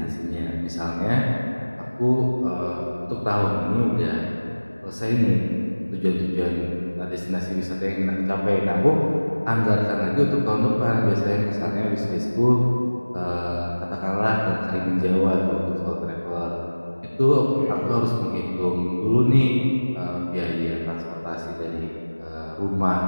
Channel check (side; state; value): both; inverted; correlation -1.00